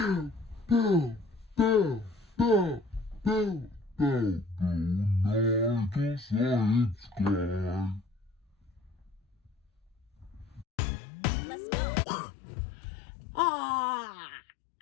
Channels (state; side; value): drops out; right; at 10.7 s